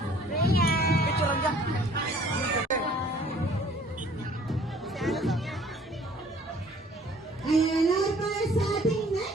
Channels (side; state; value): both; normal; correlation 0.56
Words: Picture lang dyan. Ayan, now para sa ating